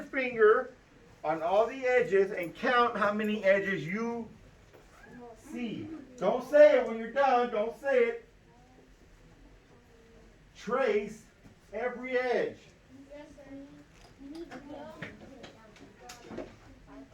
finger on all the edges and count how many edges you see. Don't say it when you're done. Don't say it. Trace every edge.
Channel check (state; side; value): identical; both; correlation 1.00